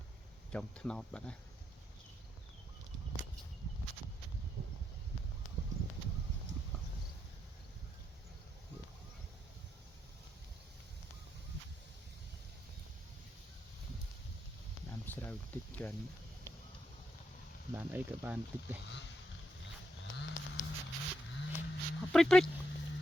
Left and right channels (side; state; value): both; normal; correlation 0.81